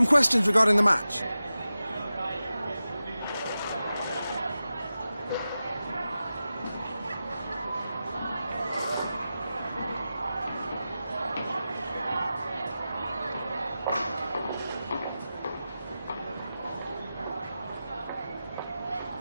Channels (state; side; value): inverted; both; correlation -0.93